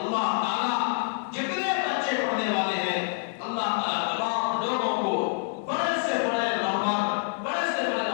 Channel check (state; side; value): silent; right; digital silence